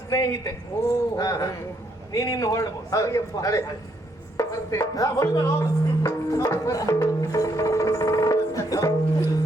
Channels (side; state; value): both; normal; correlation 0.73